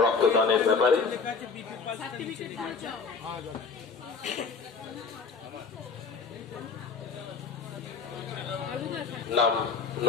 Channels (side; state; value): right; quieter; 5.1 dB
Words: রক্তদানের ব্যাপারে। নাম